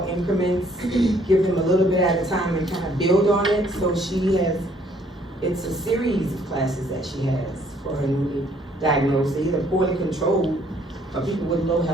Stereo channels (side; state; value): both; normal; correlation 0.63